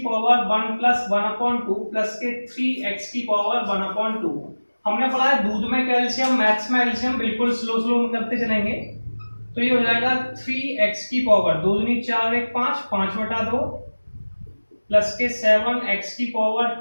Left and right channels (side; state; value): both; inverted; correlation -1.00